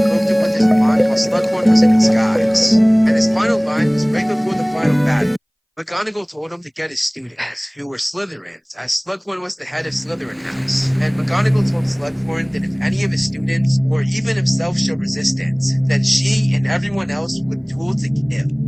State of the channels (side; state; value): both; identical; correlation 1.00